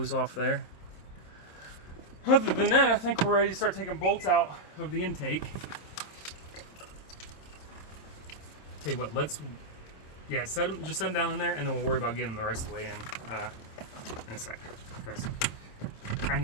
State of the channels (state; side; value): late; right; 26 ms